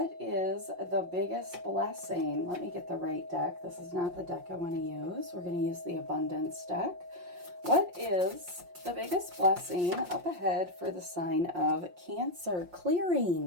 is the biggest blessing? Let me get the right deck. This is not the deck I want to use. We're going to use the abundance deck. What is the biggest blessing up ahead for the sign of Cancer?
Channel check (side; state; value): left; late; 5.6 ms